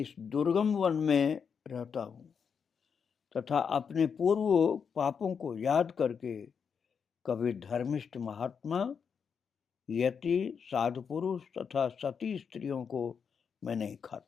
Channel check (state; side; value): quieter; right; 6.5 dB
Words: दुर्गम वन में रहता हूं तथा अपने पूर्व पापों को याद करके कभी धर्मिष्ठ महात्मा, यति, साधु पुरुष तथा सती स्त्रियों को मैं नहीं